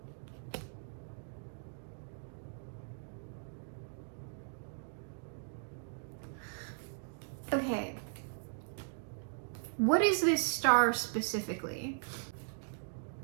Okay. What is this star specifically?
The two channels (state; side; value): silent; left; digital silence